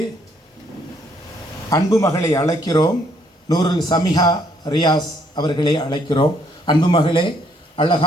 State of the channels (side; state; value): both; normal; correlation 0.68